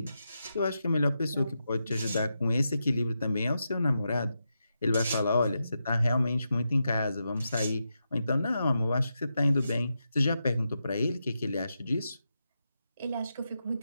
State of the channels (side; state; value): both; inverted; correlation -0.87